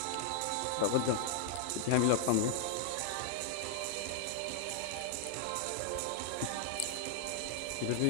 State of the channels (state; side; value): different; both; correlation 0.00